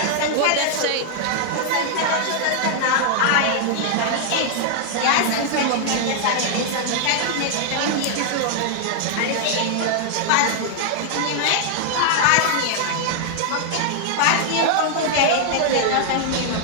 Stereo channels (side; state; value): both; different; correlation 0.00